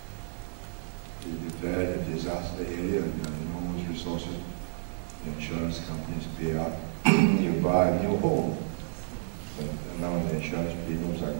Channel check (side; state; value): left; silent; digital silence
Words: we declared a disaster area and enormous resources. The insurance companies pay out. You buy a new home. And now the insurance premiums are